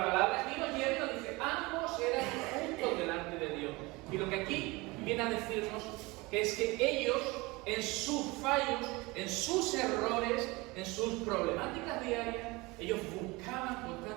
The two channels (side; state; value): left; quieter; 23.5 dB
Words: aquí nos lleva y nos dice, ambos eran justos delante de Dios. Y lo que aquí viene a decirnos que es que ellos, en sus fallos, en sus errores, en sus problemáticas diarias, ellos buscaban